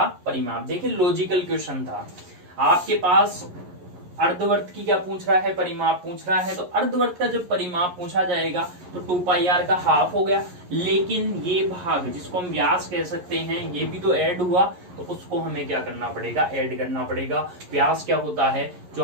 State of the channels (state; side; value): late; left; 11 ms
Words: परिमाप। देखिए लॉजिकल क्वेश्चन था, आपके पास अर्धवर्त की क्या पूछ रहा है, परिमाप पूछ रहा है। तो अर्धवर्त का जब परिमाप पूछा जाएगा तो 2 पाई आर का हाफ हो गया, लेकिन ये भाग जिसको हम व्यास कह सकते हैं ये भी तो ऐड हुआ, तो उसको हमें क्या करना पड़ेगा, ऐड करना पड़ेगा। व्यास क्या होता है, जो